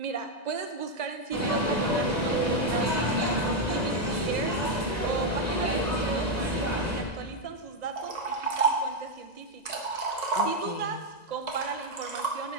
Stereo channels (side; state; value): right; late; 1.9 ms